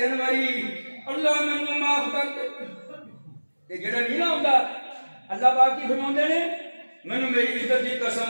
باری اللہ مینوں معاف کر دے, تے جڑا نہیں نہ ہوندا اللہ پاک کی فرماتے نے مینوں میری عزت دی قسم,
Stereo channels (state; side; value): inverted; both; correlation -1.00